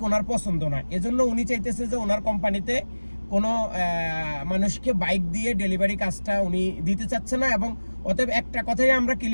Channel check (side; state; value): both; inverted; correlation -1.00